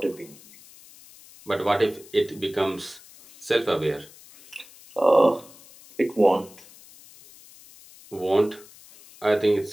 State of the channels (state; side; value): noise; left; hiss, 22 dB below the sound